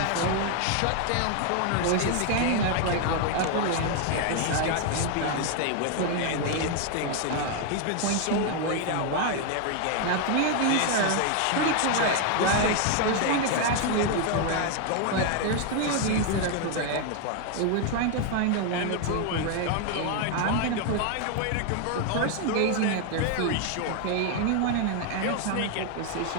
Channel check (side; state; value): both; different; correlation 0.01